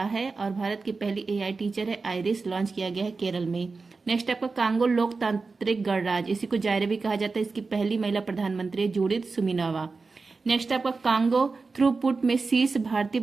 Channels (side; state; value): left; quieter; 4.2 dB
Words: है। और भारत की पहली AI टीचर है आइरिस, लॉन्च किया गया है केरल में। नेक्स्ट आपका कांगो लोकतांत्रिक गणराज्य, इसी को जायरे भी कहा जाता है, इसकी पहली महिला प्रधानमंत्री है जूडिथ सुमिनोवा। नेक्स्ट आपका कांगो थ्रूपुट में शीर्ष भारतीय